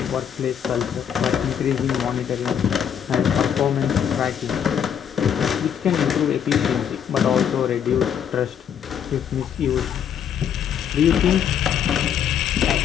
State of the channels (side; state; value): right; quieter; 8.6 dB